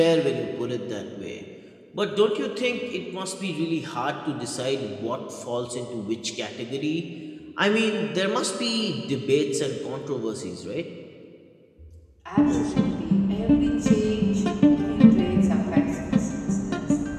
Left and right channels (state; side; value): identical; both; correlation 1.00